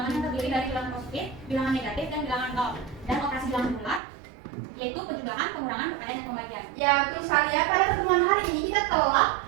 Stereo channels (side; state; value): left; drops out; at 4.0 s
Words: yang terdiri dari bilangan positif, bilangan negatif, dan bilangan nol. Dan operasi bilangan bulat yaitu penjumlahan, pengurangan, perkalian, dan pembagian. Ya, betul sekali ya. Pada pertemuan hari ini kita telah